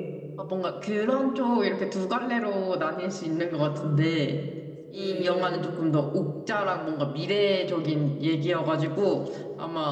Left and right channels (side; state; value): both; identical; correlation 1.00